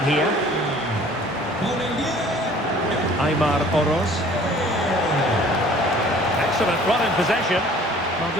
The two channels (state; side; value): normal; both; correlation 0.51